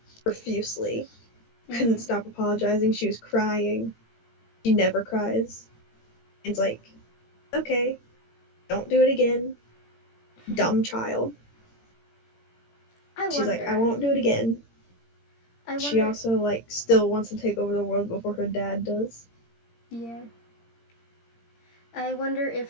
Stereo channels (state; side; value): late; right; 17 ms